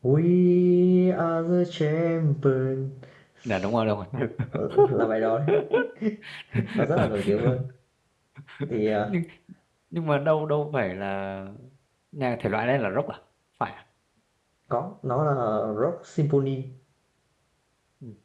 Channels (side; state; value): both; identical; correlation 1.00